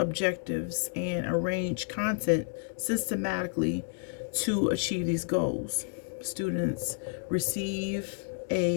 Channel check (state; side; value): silent; right; digital silence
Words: and arrange content systematically to achieve these goals. Students receive